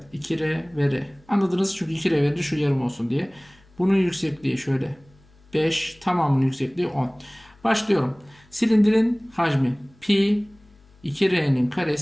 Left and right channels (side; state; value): left; noise; hum, 29 dB below the sound